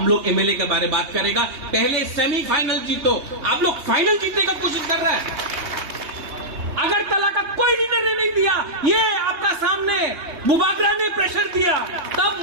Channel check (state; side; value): late; left; 3.2 ms